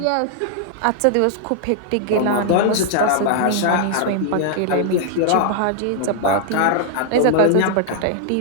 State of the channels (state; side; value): different; both; correlation 0.00